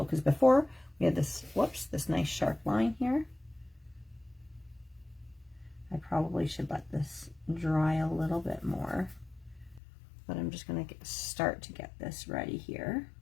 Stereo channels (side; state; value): right; drops out; at 9.8 s